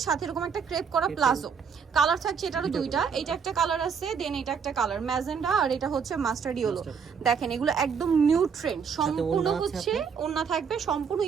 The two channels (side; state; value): left; quieter; 6.5 dB